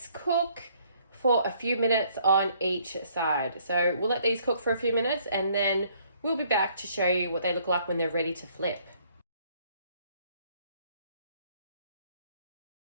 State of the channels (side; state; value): both; inverted; correlation -0.64